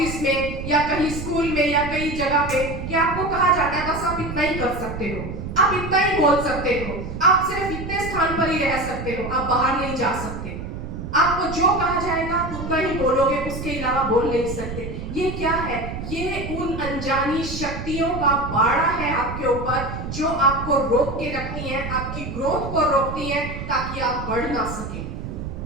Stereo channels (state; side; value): noise; right; rumble, 7 dB below the sound